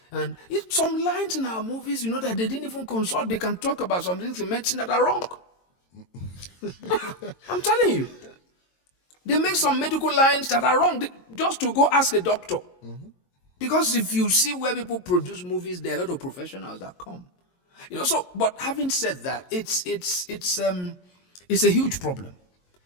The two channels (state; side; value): late; right; 22 ms